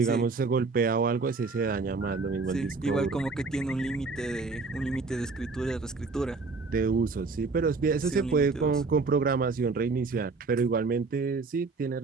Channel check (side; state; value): left; quieter; 4.1 dB